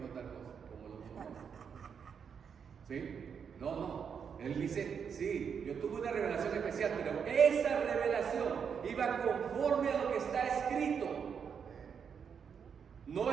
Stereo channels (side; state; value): left; quieter; 6.9 dB